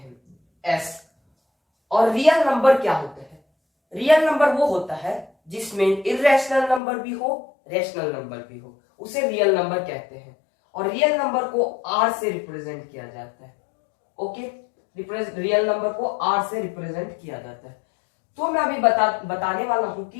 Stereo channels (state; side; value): drops out; right; at 6.8 s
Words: s। और रियल नंबर क्या होते हैं? रियल नंबर वो होता है जिसमें इर्रेशनल नंबर भी हो, रेशनल नंबर भी हो, उसे रियल नंबर कहते हैं। और रियल नंबर को r से रिप्रेजेंट किया जाता है। ओके, रियल नंबर को r से रिप्रेजेंट किया जाता है। तो मैं अभी बताने वाला हूं कि